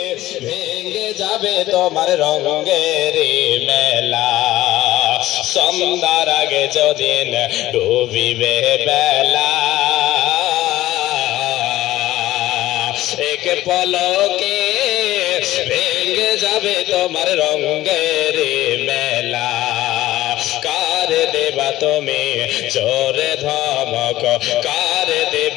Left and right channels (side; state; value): right; quieter; 15.7 dB